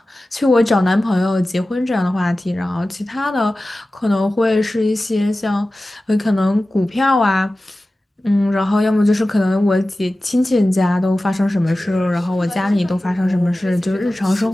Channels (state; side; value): normal; both; correlation 0.96